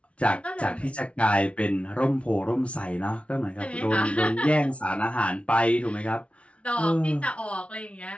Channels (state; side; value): late; right; 0.062 ms